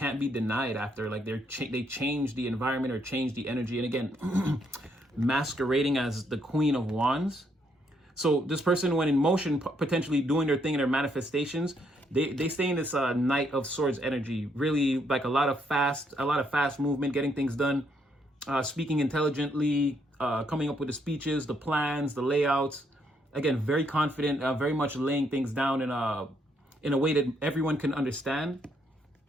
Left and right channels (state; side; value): normal; both; correlation 0.73